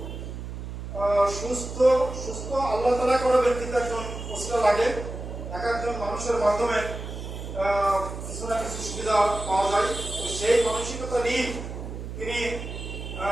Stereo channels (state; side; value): noise; right; hum, 8 dB below the sound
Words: সুস্থ সুস্থ আল্লাহ তাআলা করে ব্যক্তিত্ব একজন ওসিলা লাগে। এক একজন মানুষের মাধ্যমে কিছু না কিছু সুবিধা পাওয়া যায়। সেই মানসিকতা নিয়ে তিনি